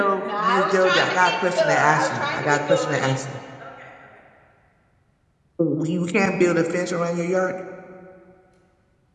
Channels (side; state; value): both; identical; correlation 1.00